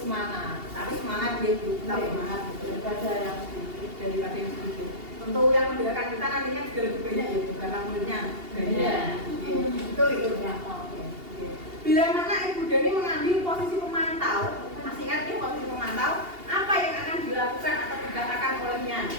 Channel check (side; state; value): left; late; 2.8 ms